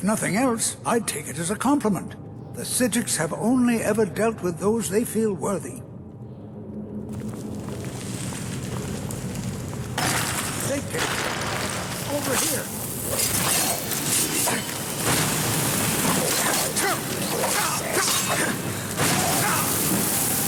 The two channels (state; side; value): identical; both; correlation 1.00